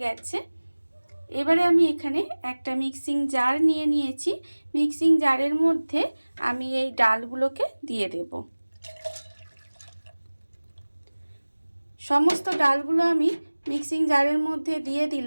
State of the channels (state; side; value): inverted; both; correlation -1.00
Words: গেছে। এবারে আমি এখানে একটা মিক্সিং জার নিয়ে নিয়েছি। মিক্সিং জারের মধ্যে আমি এই ডালগুলোকে দিয়ে দেব। সমস্ত ডালগুলো আমি মিক্সিং জারের মধ্যে দিয়ে